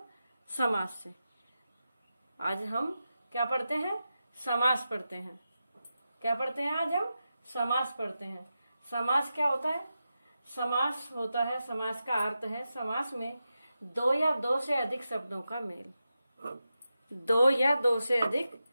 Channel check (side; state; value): both; inverted; correlation -0.91